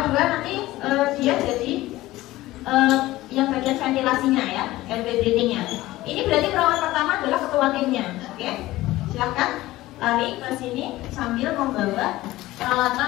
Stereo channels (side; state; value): right; quieter; 17.2 dB